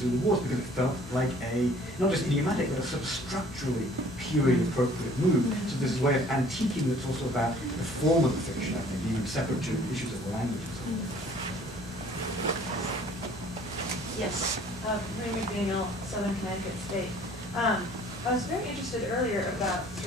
Wars, because it felt like a, not just idiomatic, but a sort of structurally period-appropriate move. So this is a way of antiquing that's also about the form of the fiction, I think, even separate to issues of language. Yes, Marie McDaniel, Southern Connecticut State. I was very interested earlier about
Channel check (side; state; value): both; normal; correlation 0.54